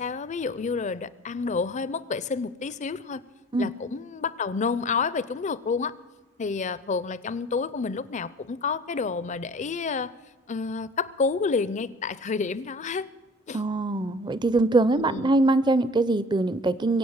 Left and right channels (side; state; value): both; normal; correlation 0.46